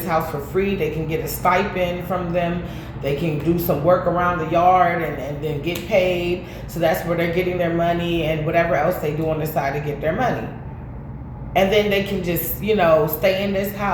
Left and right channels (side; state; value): both; identical; correlation 1.00